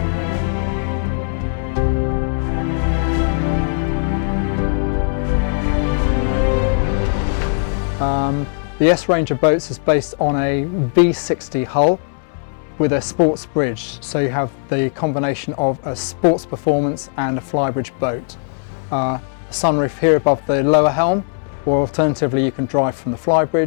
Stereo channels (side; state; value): right; silent; digital silence